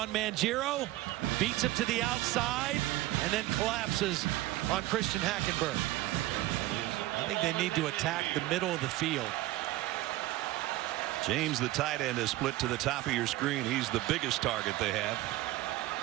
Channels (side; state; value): left; quieter; 17.1 dB